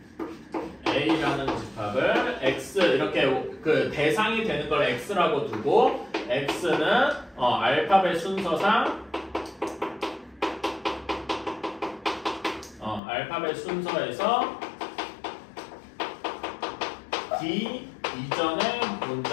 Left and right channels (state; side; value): drops out; right; at 13.0 s